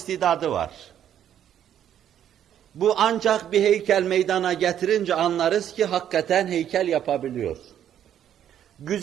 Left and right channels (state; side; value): quieter; left; 10.2 dB